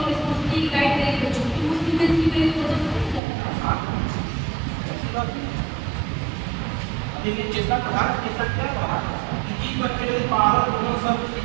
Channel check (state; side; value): drops out; left; at 3.2 s